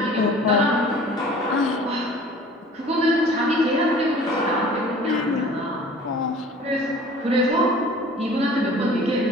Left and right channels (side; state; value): both; normal; correlation 0.47